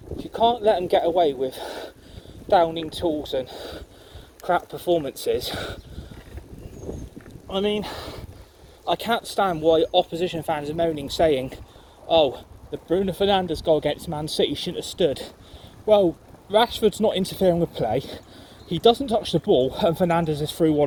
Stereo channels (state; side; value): identical; both; correlation 1.00